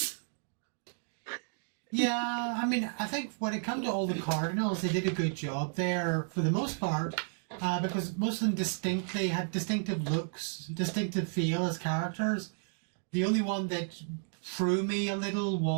Yeah, I mean, I think when it comes to all the Cardinals, they did a good job there for the most part, because most of them distinctly had distinctive looks, distinctive feel as characters. The only one that threw me a little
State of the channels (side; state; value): left; silent; digital silence